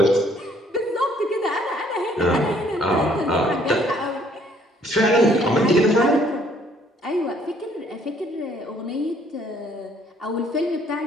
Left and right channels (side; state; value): both; normal; correlation 0.63